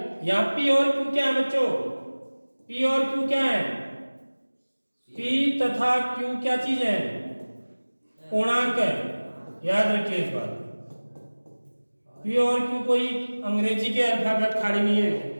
यहाँ पी और क्यू क्या है बच्चों, पी और क्यू क्या है, पी तथा क्यू क्या चीज है, पूर्णांक है, याद रखिए इस बात। पी और क्यू कोई अंग्रेजी के अल्फाबेट खाली नहीं है,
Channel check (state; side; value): inverted; both; correlation -1.00